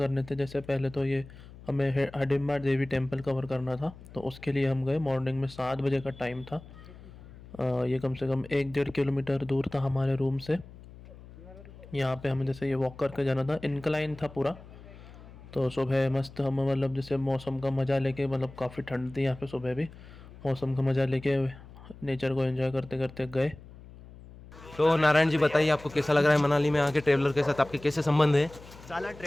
थे। जैसे पहले तो ये हमें हडिम्बा देवी टेम्पल कवर करना था, तो उसके लिए हम गए। मॉर्निंग में 7 बजे का टाइम था। ये कम से कम 1-1.5 किलोमीटर दूर था हमारे रूम से। यहाँ पे हमें जैसे ये वॉक करके जाना था, इनक्लाइन था पूरा। तो सुबह मस्त हम मतलब जैसे मौसम का मज़ा लेके, मतलब काफ़ी ठंड थी यहाँ पे, सुबह भी मौसम का मज़ा लेके नेचर को एंजॉय करते करते गए। तो नारायण जी बताइए, आपको कैसा लग रहा है मनाली में आके? ट्रेवलर के साथ आपके कैसे संबंध है? साला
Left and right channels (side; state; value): left; noise; hum, 18 dB below the sound